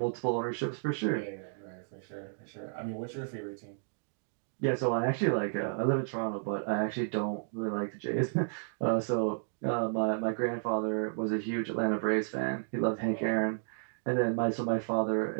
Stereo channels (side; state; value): left; silent; digital silence